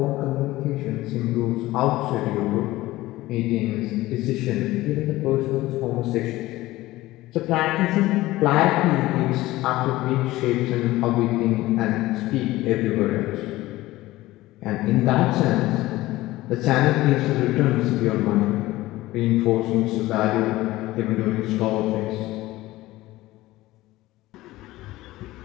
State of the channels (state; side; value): quieter; right; 17.6 dB